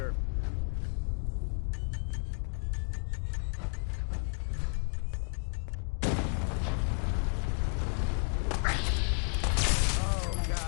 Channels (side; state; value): right; quieter; 39.6 dB